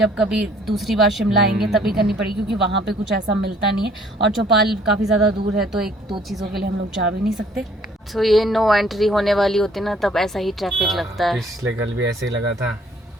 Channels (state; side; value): normal; both; correlation 0.59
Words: कभी दूसरी बार शिमला आएंगे तभी करनी पड़ेगी, क्योंकि वहाँ पे कुछ ऐसा मिलता नहीं है और चौपाल काफी ज्यादा दूर है, तो 1-2 चीजों के लिए हम लोग जा भी नहीं सकते। तो ये नो एंट्री होने वाली होती ना, तब ऐसा ही ट्रैफिक लगता है। पिछले कल भी ऐसे ही लगा था,